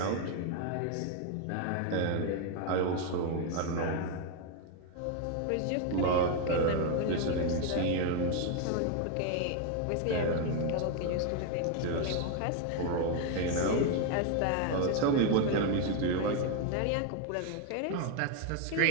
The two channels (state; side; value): different; both; correlation 0.01